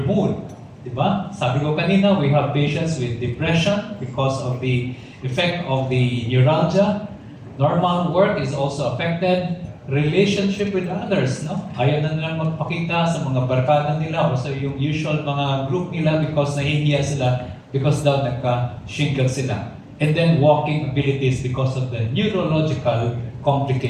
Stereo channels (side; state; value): both; identical; correlation 1.00